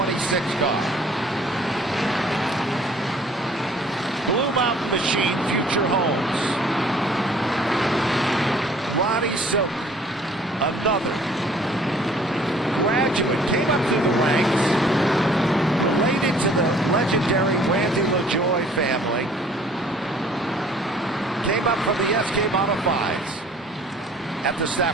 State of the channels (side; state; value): both; normal; correlation 0.55